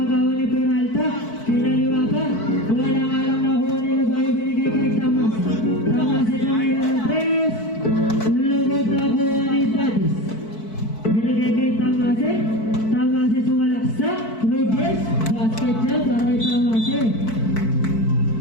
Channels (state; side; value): late; right; 4.6 ms